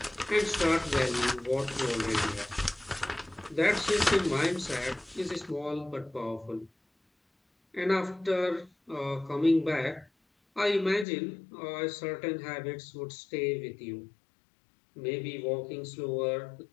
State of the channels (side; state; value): right; drops out; at 11.1 s